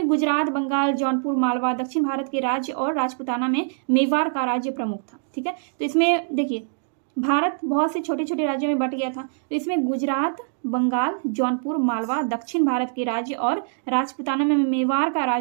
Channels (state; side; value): silent; left; digital silence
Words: गुजरात, बंगाल, जौनपुर, मालवा, दक्षिण भारत के राज्य और राजपुताना में मेवाड़ का राज्य प्रमुख था। ठीक है, तो इसमें देखिए भारत बहुत से छोटे छोटे राज्यों में बट गया था। तो इसमें गुजरात, बंगाल, जौनपुर, मालवा, दक्षिण भारत के राज्य और राजपूताना में मेवाड़ का